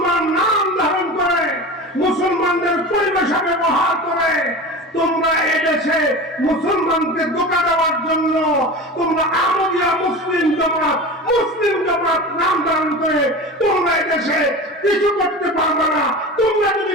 নাম ধারণ করে, মুসলমানদের পরিভাষা ব্যবহার করে তোমরা এদেশে মুসলমানকে ধোঁকা দেওয়ার জন্য তোমরা আহমদিয়া মুসলিম জামাত নাম ধারণ করে তোমরা এদেশে কিছু করতে পারবে না। তোমরা যদি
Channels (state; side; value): normal; both; correlation 0.31